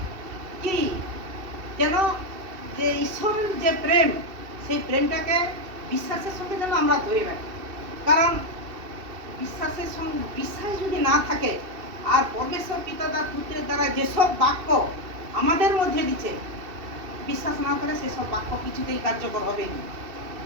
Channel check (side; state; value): left; late; 2.7 ms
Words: কি যেন যে ঈশ্বরের যে প্রেম, সেই প্রেমটাকে বিশ্বাসের সঙ্গে যেন আমরা ধরে রাখি। কারণ বিশ্বাস যদি না থাকে, আর পরমেশ্বর পিতা তার পুত্রের দ্বারা যেসব বাক্য আমাদের মধ্যে দিচ্ছে, বিশ্বাস না করে সেসব বাক্য কিছুতেই কার্যকর হবে না।